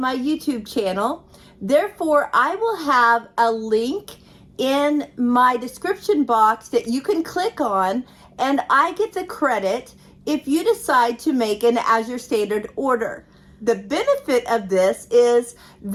YouTube channel. Therefore, I will have a link in my description box that you can click on, and I get the credit if you decide to make an Azure Standard order. The benefit of this is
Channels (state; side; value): identical; both; correlation 1.00